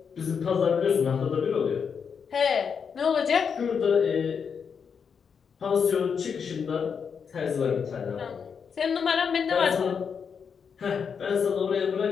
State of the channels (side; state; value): right; quieter; 6.5 dB